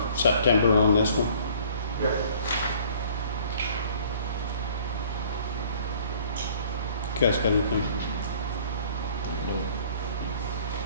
September on this one. Yep. You guys got anything?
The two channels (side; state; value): both; inverted; correlation -0.54